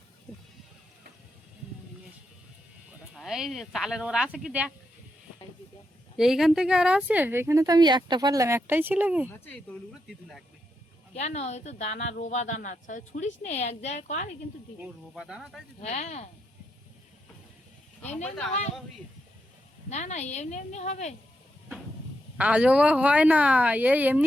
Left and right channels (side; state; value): both; normal; correlation 0.82